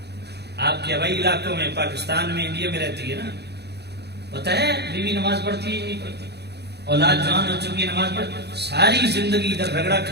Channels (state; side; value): late; left; 0.48 ms